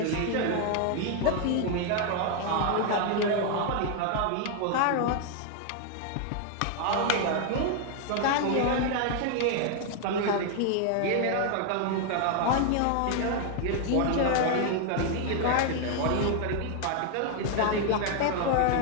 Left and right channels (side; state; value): both; different; correlation 0.00